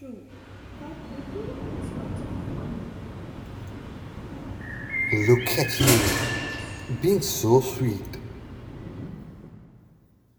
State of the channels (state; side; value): identical; both; correlation 1.00